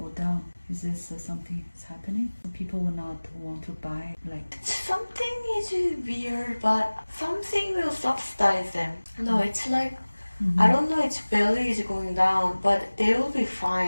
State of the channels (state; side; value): inverted; both; correlation -1.00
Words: down. Is this something that's happening? People will not want to buy Something is weird, but something will subsidize them. No, it's like, I don't know, its value is going down, but they will be